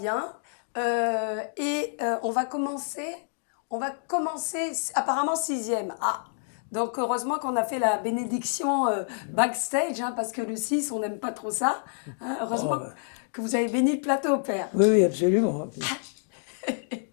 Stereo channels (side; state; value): right; silent; digital silence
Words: On va commencer apparemment sixième. Ah, donc heureusement qu'on a fait la bénédiction backstage, hein, parce que le 6, on n'aime pas trop ça. Hein. Heureusement Oh, bah. que vous avez béni le plateau, Père. Oui, oui, absolument.